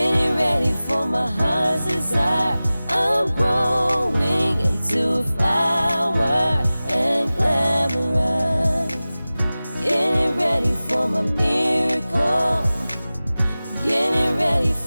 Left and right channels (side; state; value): both; inverted; correlation -0.98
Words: ready for my heart's desire. I'm growing into a flower and glamorous. Getting ready for my miracle, getting ready